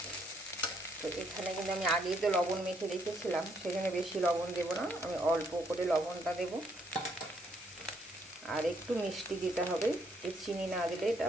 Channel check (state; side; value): normal; both; correlation 0.71